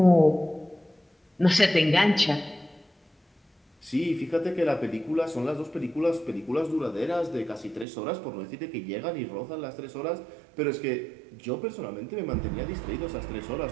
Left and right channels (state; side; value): drops out; left; at 7.9 s